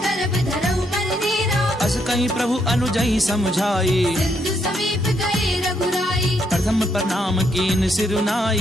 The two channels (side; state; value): both; normal; correlation 0.75